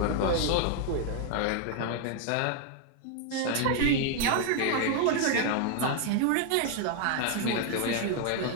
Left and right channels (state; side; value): different; both; correlation 0.01